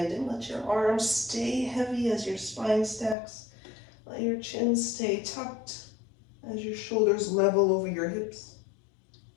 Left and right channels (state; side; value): drops out; right; at 3.2 s